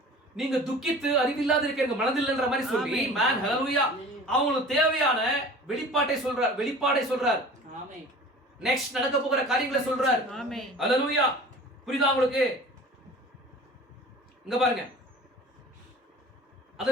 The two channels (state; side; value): normal; both; correlation 0.42